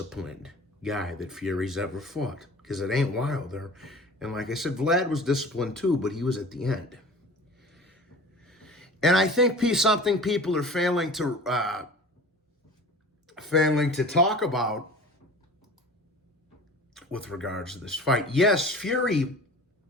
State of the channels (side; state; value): both; normal; correlation 0.41